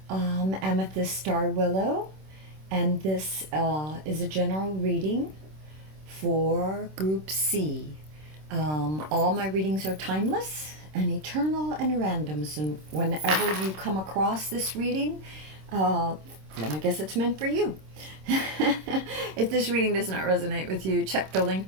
Amethyst Star Willow, and this is a general reading for Group C. All my readings are timeless and eternal and random, so whenever you come across this reading, uh, then I guess it's meant for you. If this reading does not resonate with you, check the link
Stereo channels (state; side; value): late; left; 26 ms